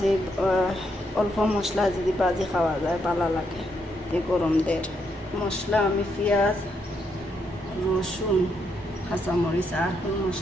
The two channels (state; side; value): normal; both; correlation 0.78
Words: অল্প মশলা যদি ভাজি খাওয়া যায় ভালো লাগে। এই গরমদের মশলা আমি পেঁয়াজ, রসুন, কাঁচামরিচ আর কোনো